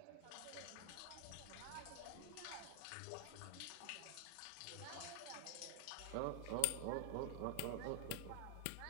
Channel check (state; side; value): different; both; correlation 0.00